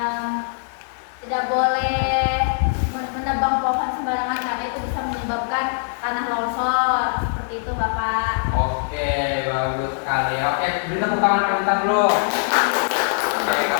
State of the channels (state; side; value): silent; right; 64 dB below the other